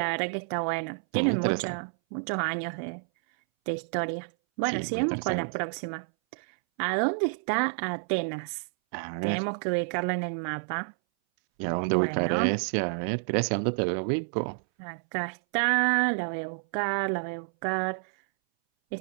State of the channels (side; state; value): left; silent; 59 dB below the other